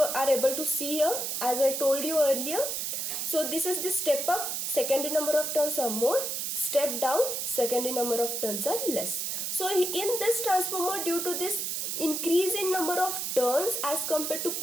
are able to see here, as I told you earlier. So this is the step up, secondary number of turns are more. Step down, secondary number of turns are less. So in this transformer, due to this increase in number of turns as compared to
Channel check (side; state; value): right; noise; hiss, 2 dB below the sound